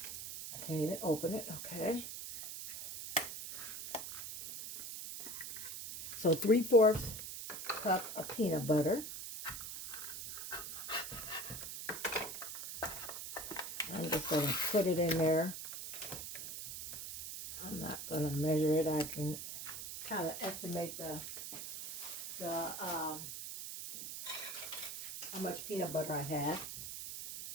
I can't even open it. Okay. So 3/4 cup of peanut butter. I'm just going to put it in there. I'm not going to measure it. I can kind of estimate how much peanut butter I have.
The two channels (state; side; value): noise; right; hiss, 8 dB below the sound